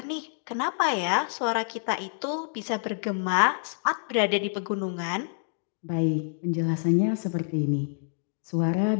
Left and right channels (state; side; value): silent; right; digital silence